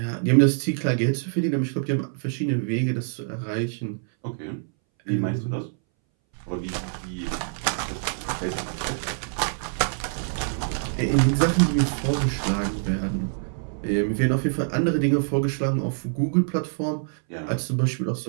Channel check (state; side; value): silent; left; 60 dB below the other